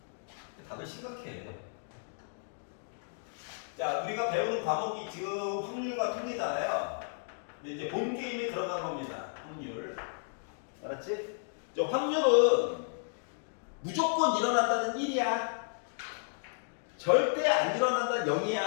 다들 심각해. 자, 우리가 배우는 과목이 지금 확률과 통계잖아요. 근데 이제 본 게임에 들어간 겁니다. 확률. 알았지? 저 확률은 무조건 일어난다는 1이야. 절대 안 일어난다는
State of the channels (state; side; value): silent; right; digital silence